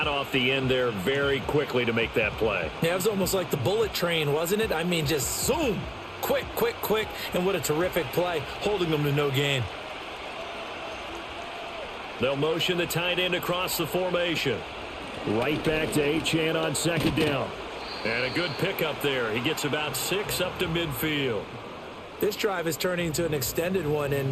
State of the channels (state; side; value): identical; both; correlation 1.00